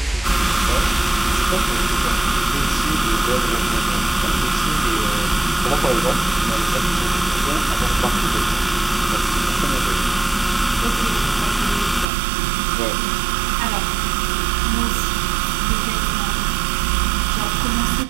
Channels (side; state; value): left; drops out; at 12.1 s